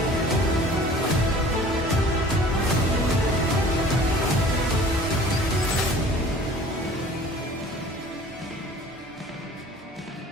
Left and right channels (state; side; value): normal; both; correlation 0.47